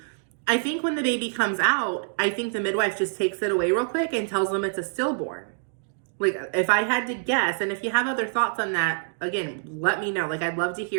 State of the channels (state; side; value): silent; left; digital silence